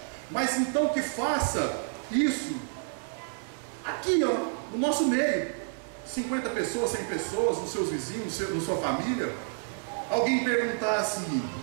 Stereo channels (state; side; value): silent; left; digital silence